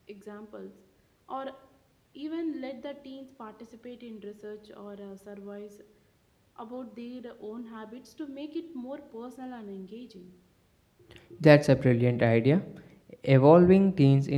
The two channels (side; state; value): both; identical; correlation 1.00